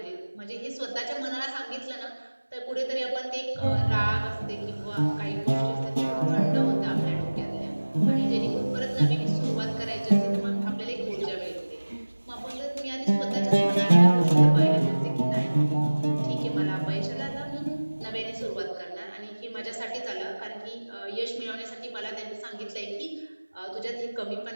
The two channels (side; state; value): both; inverted; correlation -1.00